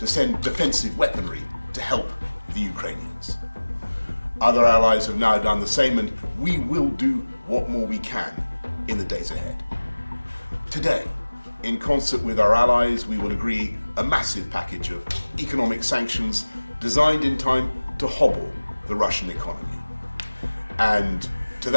send defensive weaponry to help the Ukrainians. Other allies have now done the same, and we will do what more we can in the days ahead. Today, in concert with our allies, we will agree a massive package of economic sanctions designed in time to hobble the Russian economy. And to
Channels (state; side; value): inverted; both; correlation -1.00